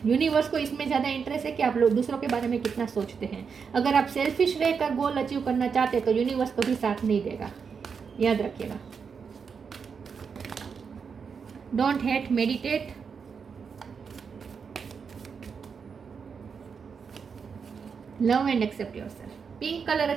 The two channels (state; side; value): quieter; left; 6.0 dB